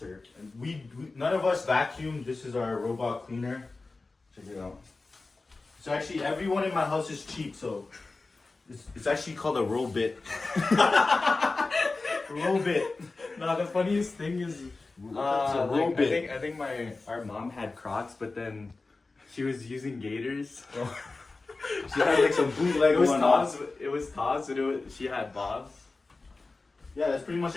We none of us vacuum. This is our robot cleaner. Check it out. So actually, everyone in my house is cheap. So it's actually called a Robit. Robit. No, the funniest thing is, a Robit. I think our mom had Crocs, but then she was using Gators. She had like some bootleg It was one Taz. on. It was Taz, and she had Bobs. Yeah, that's pretty much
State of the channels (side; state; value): right; quieter; 3.6 dB